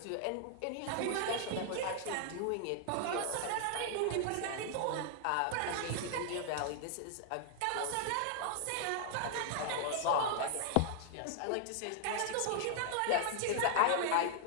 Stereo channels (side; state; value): both; different; correlation 0.00